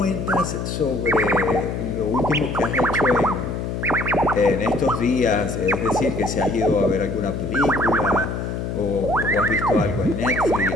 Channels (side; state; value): left; noise; hum, 4 dB below the sound